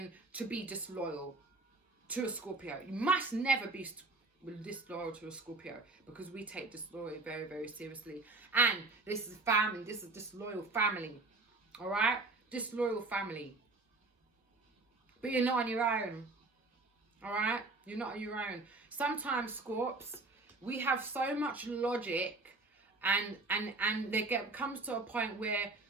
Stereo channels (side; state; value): left; quieter; 3.4 dB